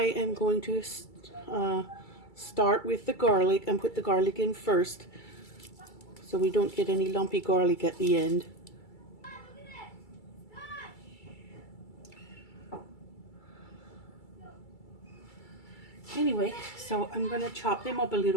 am going to start with the garlic and put the garlic in first, so we don't get any lumpy garlic at the end. Anyway, so I'm going to chop them up a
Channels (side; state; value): right; late; 2.3 ms